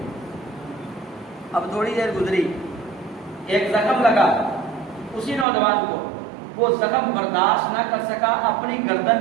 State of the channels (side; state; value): left; drops out; at 5.5 s